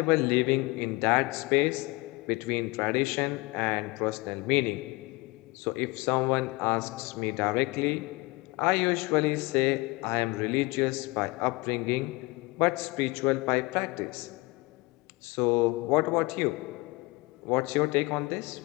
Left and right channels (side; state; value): right; quieter; 23.7 dB